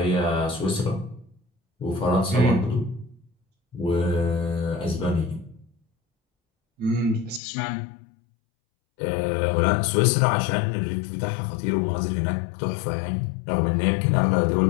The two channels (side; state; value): right; drops out; at 7.4 s